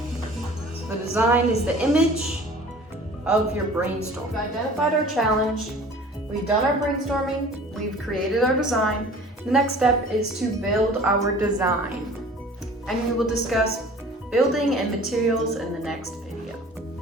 So the design is the image of your brainstorm. We've identified our challenge, we've done our brainstorming, we've created our design. The next step is to build our design. And we will discuss building and materials in the next video.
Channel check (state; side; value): normal; both; correlation 0.46